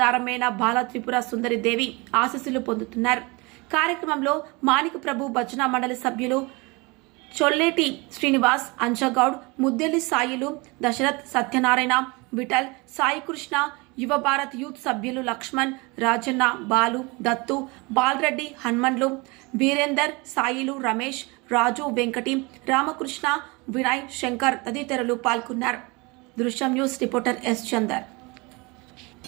బాల త్రిపుర సుందరి దేవి ఆశీస్సులు పొందుతున్నారు. కార్యక్రమంలో మాణిక ప్రభు భజన మండలి సభ్యులు చొల్లేటి శ్రీనివాస్, అంజగౌడ్, ముద్దెల్లి సాయిలు, దశరథ్, సత్యనారాయణ, విఠల్, సాయికృష్ణ, యువ భారత్ యూత్ సభ్యులు లక్ష్మణ్, రాజన్న, బాలు, దత్తు, బాలరెడ్డి, హన్మన్లు, వీరేందర్, సాయిలు, రమేష్, రాజు, వెంకటి, రామకృష్ణ, వినయ్, శంకర్ తదితరులు పాల్గొన్నారు. దృశ్యం న్యూస్ రిపోర్టర్ ఎస్ చందర్.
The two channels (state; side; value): quieter; left; 26.5 dB